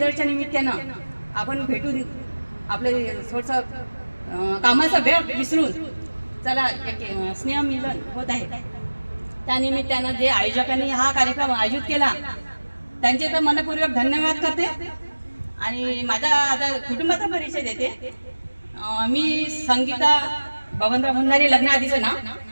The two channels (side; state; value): both; inverted; correlation -1.00